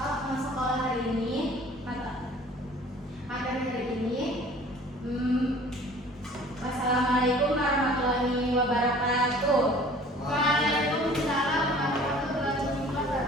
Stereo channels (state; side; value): normal; both; correlation 0.49